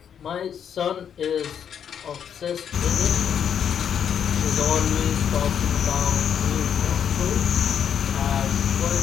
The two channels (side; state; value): right; quieter; 8.3 dB